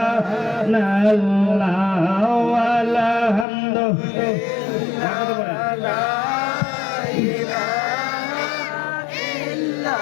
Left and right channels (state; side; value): drops out; right; at 3.5 s